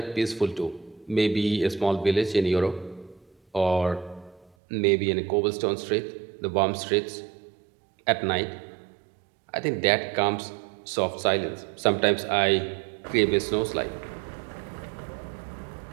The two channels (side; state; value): left; drops out; at 4.5 s